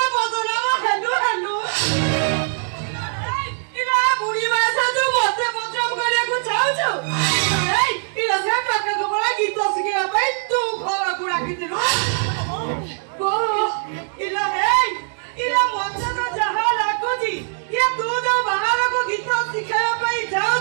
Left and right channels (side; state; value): left; silent; 65 dB below the other